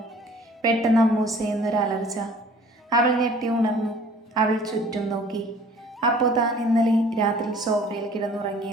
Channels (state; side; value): normal; both; correlation 0.51